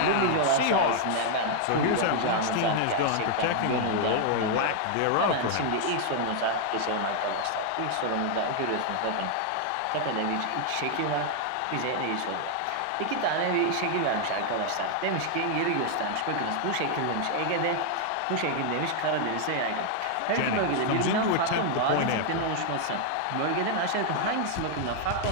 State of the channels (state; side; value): different; both; correlation 0.00